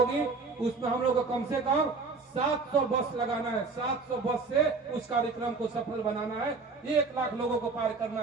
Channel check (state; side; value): quieter; left; 4.2 dB